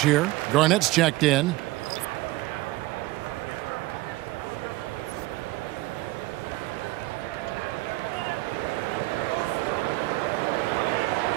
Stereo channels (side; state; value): left; quieter; 19.3 dB